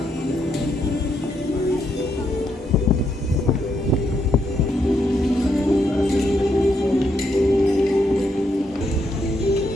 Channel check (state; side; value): normal; both; correlation 0.78